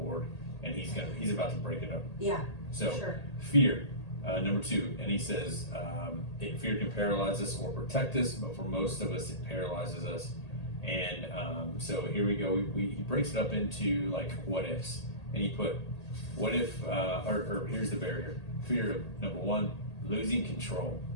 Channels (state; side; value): late; right; 1.8 ms